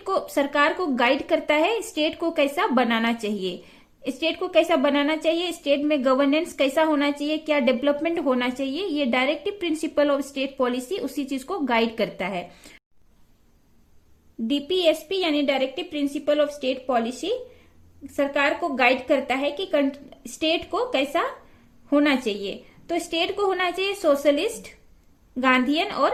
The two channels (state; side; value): identical; both; correlation 1.00